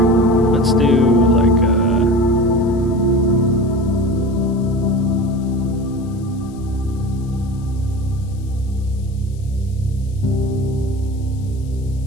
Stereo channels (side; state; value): left; noise; hiss, 28 dB below the sound